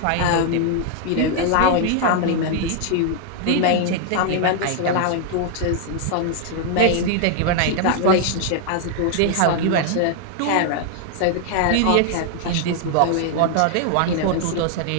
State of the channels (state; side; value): different; both; correlation 0.00